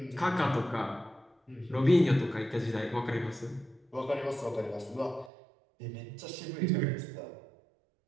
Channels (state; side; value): drops out; left; at 5.3 s